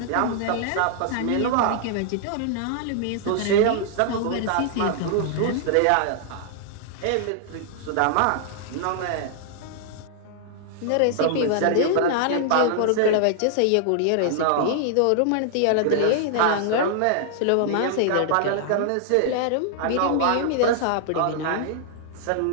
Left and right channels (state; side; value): different; both; correlation -0.01